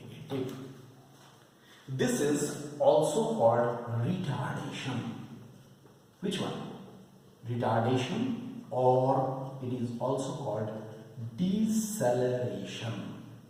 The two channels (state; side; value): identical; both; correlation 1.00